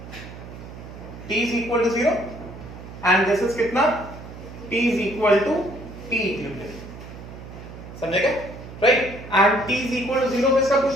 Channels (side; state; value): right; noise; hum, 14 dB below the sound